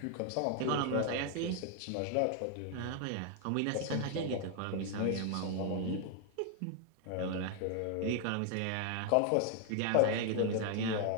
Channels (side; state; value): both; different; correlation 0.00